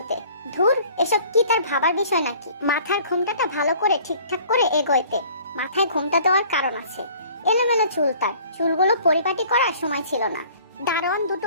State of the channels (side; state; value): both; inverted; correlation -0.52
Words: ধুর, এসব কি তার ভাবার বিষয় নাকি? মাথার ঘোমটাটা ভালো করে ঠিকঠাক করে এগোইতে। মাথায় ঘোমটা দেওয়ার কারণ আছে। এলোমেলো চুল, তার চুলগুলো পরিপাটি করার সময় ছিল না। দারোয়ান